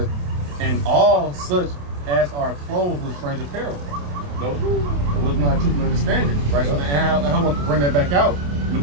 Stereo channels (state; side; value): late; left; 28 ms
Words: are clothed with strange apparel. No, it was not truth and understanding, right? So, and I want to bring that back out in the